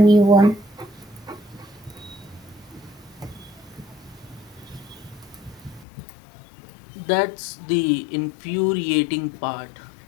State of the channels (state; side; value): drops out; right; at 5.9 s